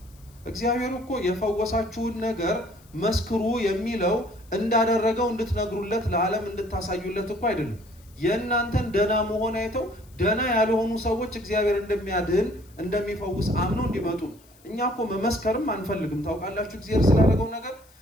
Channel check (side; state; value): left; noise; hiss, 28 dB below the sound